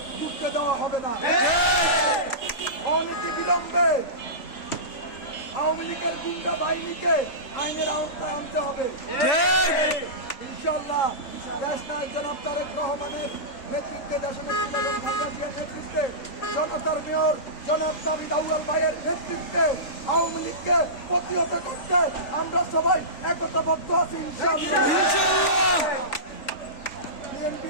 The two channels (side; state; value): right; late; 3.4 ms